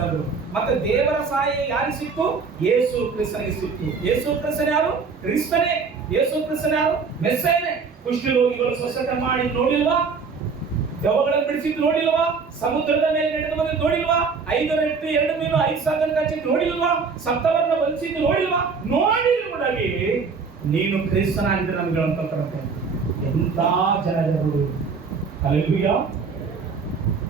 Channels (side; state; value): left; quieter; 5.1 dB